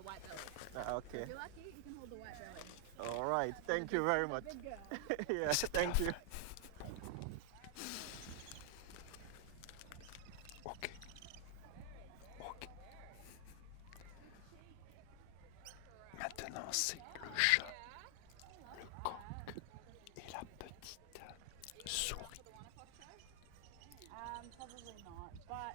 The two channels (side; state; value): both; different; correlation 0.00